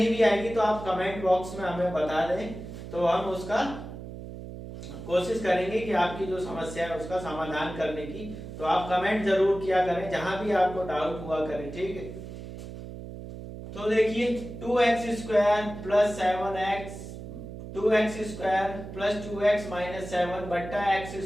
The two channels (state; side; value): noise; right; hum, 11 dB below the sound